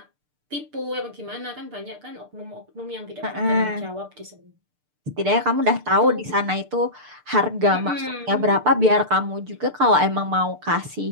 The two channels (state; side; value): late; left; 6.7 ms